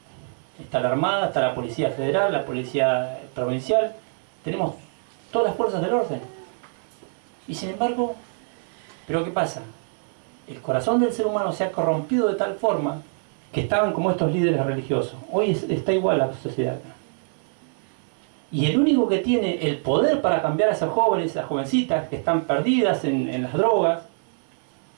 está la Armada, está la Policía Federal, la Policía Provincial. Tenemos todas las fuerzas del orden. Y sin embargo, ¿pero qué pasa? El corazón del ser humano se ha corrompido de tal forma que estaban como estos líderes religiosos. Hoy está igual la sociedad acá. Y el único que tiene el poder para cambiar a esos jóvenes, esas jovencitas que están perdidas en las drogas,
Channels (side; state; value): left; silent; 62 dB below the other